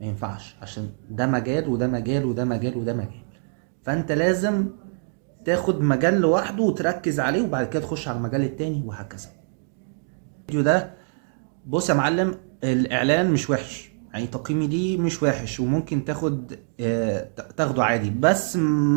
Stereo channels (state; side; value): silent; left; digital silence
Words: ينفعش، عشان ده مجال وده مجال وده مجال وده مجال. فانت لازم تاخد مجال لوحده وتركز عليه، وبعد كده تخش على المجال التاني وهكذا. الفيديو ده، بص يا معلم، الاعلان مش وحش، يعني تقييمي ليه مش وحش، وممكن تاخده عادي، بس